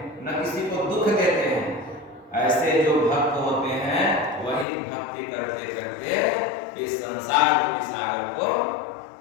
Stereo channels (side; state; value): right; drops out; at 4.7 s